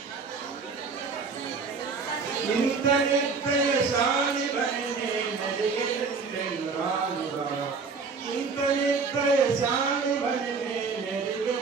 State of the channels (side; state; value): left; quieter; 4.8 dB